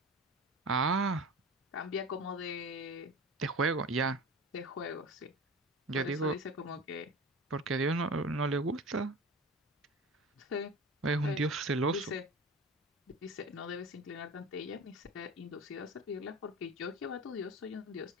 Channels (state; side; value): normal; both; correlation 0.33